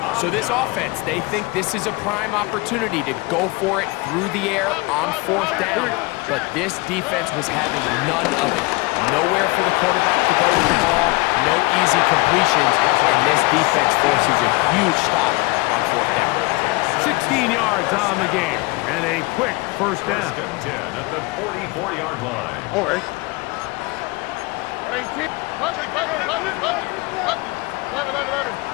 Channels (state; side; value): quieter; right; 24.6 dB